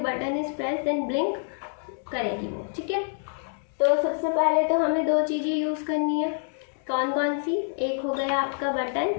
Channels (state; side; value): silent; right; 60 dB below the other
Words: button is press then blink करेगी वो। ठीक है, तो सबसे पहले तो हमें दो चीज़ें यूज़ करनी है। कौन कौन सी? एक हो गया आपका बटन